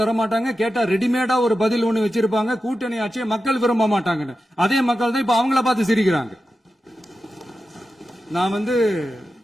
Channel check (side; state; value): both; normal; correlation 0.91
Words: கேட்டா ரெடிமேடா ஒரு பதில் ஒண்ணு வச்சிருப்பாங்க, கூட்டணி ஆட்சியை மக்கள் விரும்ப மாட்டாங்கன்னு. அதே மக்கள் தான் இப்ப அவங்கள பார்த்து சிரிக்கிறாங்க. நான்